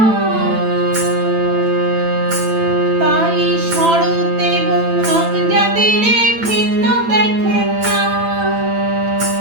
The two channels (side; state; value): left; late; 9.0 ms